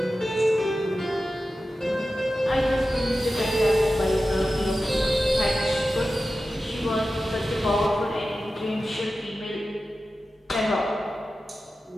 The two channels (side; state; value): both; normal; correlation 0.93